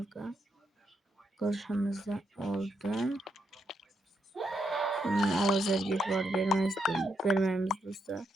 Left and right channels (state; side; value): normal; both; correlation 0.80